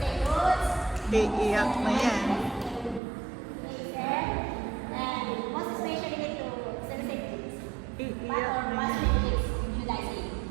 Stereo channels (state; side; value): drops out; left; at 3.0 s